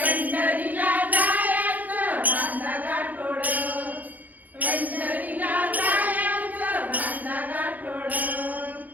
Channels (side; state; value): left; late; 0.081 ms